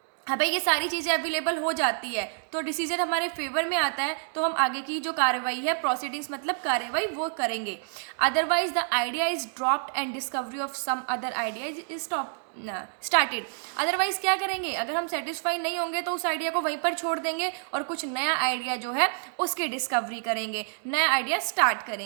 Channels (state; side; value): silent; left; digital silence